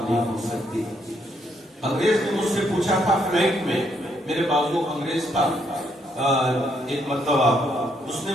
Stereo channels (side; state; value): both; normal; correlation 0.73